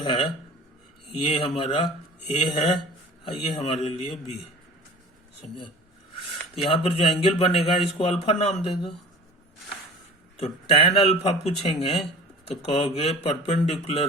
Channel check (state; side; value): normal; both; correlation 0.41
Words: ये हमारा A है और ये हमारे लिए B है, समझे? तो यहाँ पर जो एंगल बनेगा इसको अल्फा नाम दे दो। तो tan अल्फा पूछेंगे तो कहोगे